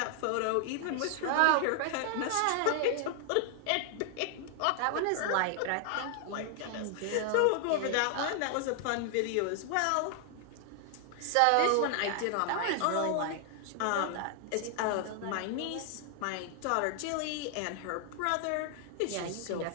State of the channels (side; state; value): both; different; correlation 0.00